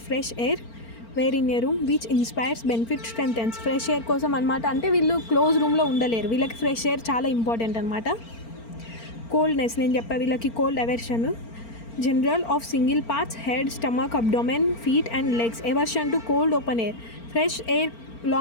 fresh air, where in a room which inspires benefit strengthens. Fresh air కోసం అనమాట. అంటే వీళ్ళు క్లోజ్ రూమ్లో ఉండలేరు, వీళ్ళకి ఫ్రెష్ ఎయిర్ చాలా ఇంపార్టెంట్ అనమాట. కోల్డ్నెస్ నేను చెప్పా, వీళ్ళకి cold aversion. General of single parts, head, stomach, abdomen, feet and legs. Aversion to cold open air. Fresh air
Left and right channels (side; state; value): right; late; 4.4 ms